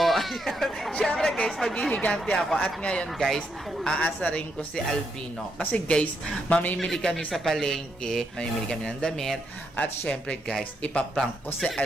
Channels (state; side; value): normal; both; correlation 0.79